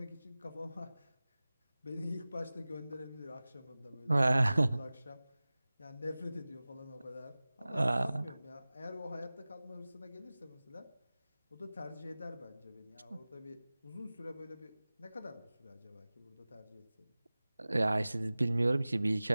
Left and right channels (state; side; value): inverted; both; correlation -0.98